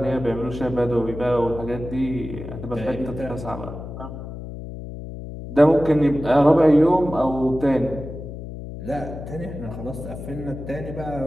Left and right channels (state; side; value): noise; left; hum, 10 dB below the sound